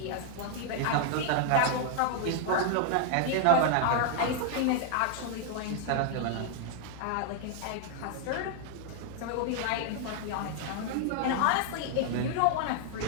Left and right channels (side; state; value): both; different; correlation 0.00